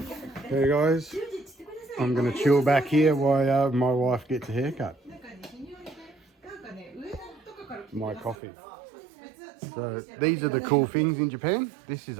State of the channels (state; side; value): drops out; left; at 8.3 s